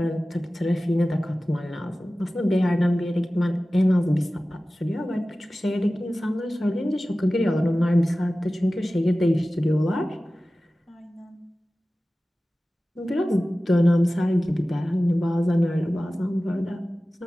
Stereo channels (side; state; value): both; normal; correlation 0.96